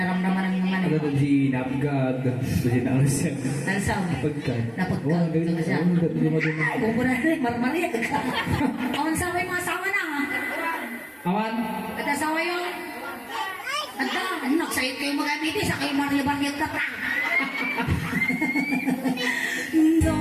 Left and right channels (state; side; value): identical; both; correlation 1.00